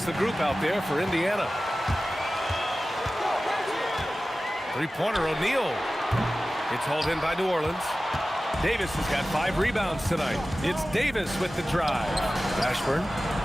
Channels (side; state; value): both; normal; correlation 0.96